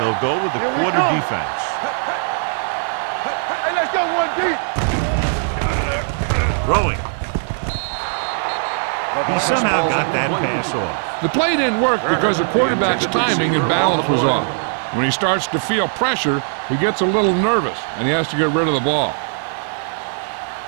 They'll go with the quarter defense. Hey, let's go 1 deep. Throwing. He somehow got that pass off. The play didn't work because the quarterback's timing and balance was off. When he starts to feel pressure, he gets a little nervous, and he has to get rid of the ball.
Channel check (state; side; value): silent; left; 66 dB below the other